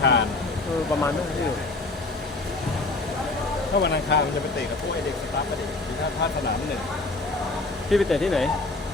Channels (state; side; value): quieter; right; 3.2 dB